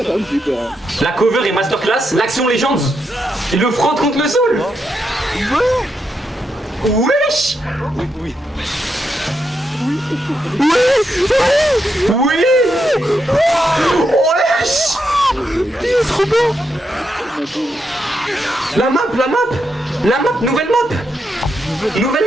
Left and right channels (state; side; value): normal; both; correlation 0.83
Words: t'as vu, j'ai peur. Hein. La cover est masterclass. L'action Legends. Il le frotte contre le sol. Wesh. Oui. Oui. Wesh. Il est trop beau. La map, nouvelle map.